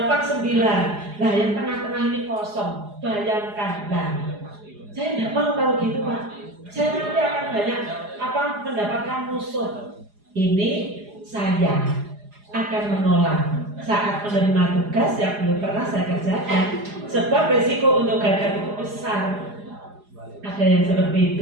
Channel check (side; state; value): left; late; 4.8 ms